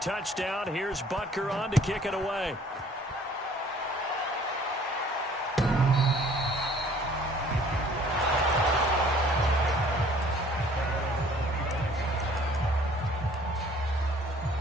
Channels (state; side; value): normal; both; correlation 0.55